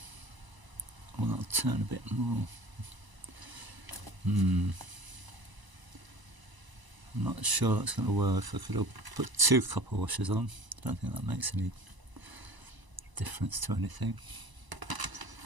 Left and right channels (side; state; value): left; late; 1.0 ms